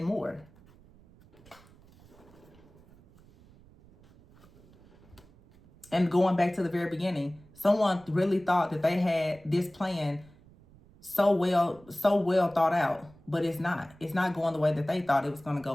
more. And going back to the very beginning, someone really thought that they had this plan so well thought out, but it's not. It's not going the way that they thought it was going to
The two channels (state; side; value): noise; right; rumble, 26 dB below the sound